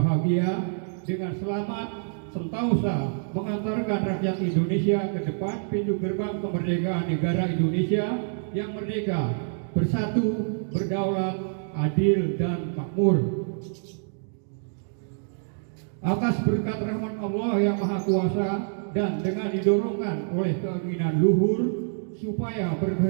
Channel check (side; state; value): left; silent; digital silence